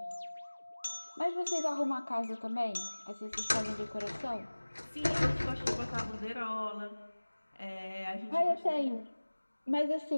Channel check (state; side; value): inverted; both; correlation -1.00